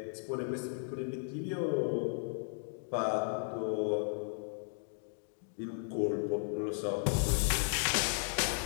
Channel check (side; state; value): right; silent; digital silence